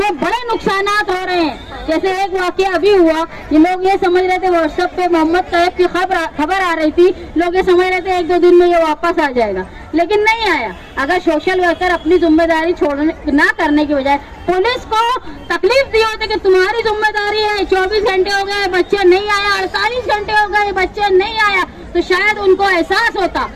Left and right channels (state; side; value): identical; both; correlation 1.00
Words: बड़े नुकसानात हो रहे हैं। जैसे एक वाकया अभी हुआ, ये लोग ये समझ रहे थे व्हाट्सएप पे मोहम्मद तैयब की खबर आ रही थी, लोग ये समझ रहे थे 1-2 दिन में ये वापस आ जाएगा, लेकिन नहीं आया। अगर सोशल वर्कर अपनी जिम्मेदारी छोड़ने ना करने की बजाय पुलिस को तकलीफ दी होती कि तुम्हारी जिम्मेदारी है, 24 घंटे हो गए बच्चा नहीं आया, 48 घंटे हो गए बच्चा नहीं आया, तो शायद उनको एहसास होता